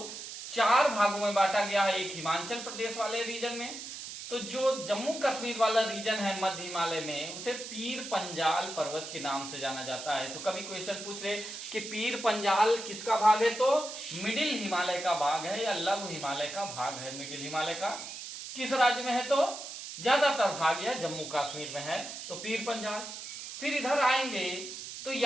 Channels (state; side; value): noise; right; hiss, 9 dB below the sound